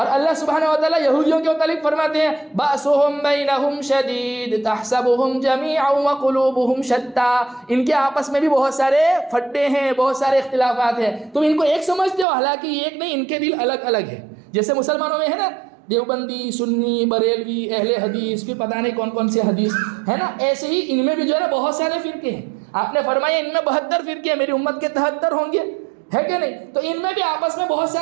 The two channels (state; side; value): drops out; left; at 12.2 s